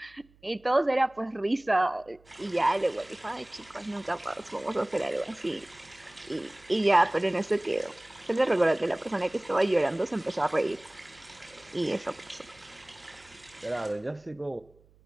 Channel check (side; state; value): right; noise; hum, 30 dB below the sound